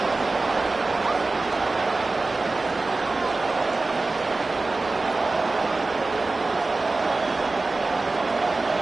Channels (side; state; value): left; quieter; 3.4 dB